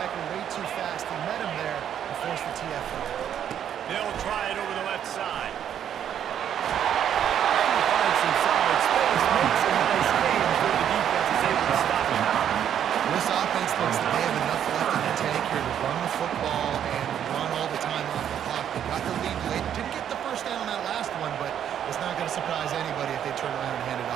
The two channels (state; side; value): quieter; left; 9.5 dB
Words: way too fast. He met him there and forced the TFL. They'll try it over the left side. And he finds some solid space. Makes a nice game before the defense is able to stop him. This offense thinks that they have enough left in the tank here to run the football and run all the time off the clock. They got the lead late. Didn't get the first down on that last one, but it's not going to surprise anybody if they turn around and hand it